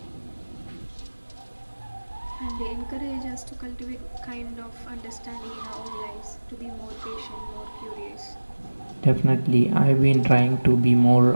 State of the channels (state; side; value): inverted; both; correlation -1.00